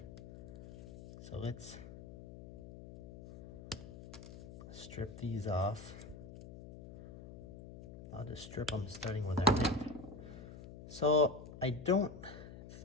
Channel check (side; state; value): left; noise; hum, 14 dB below the sound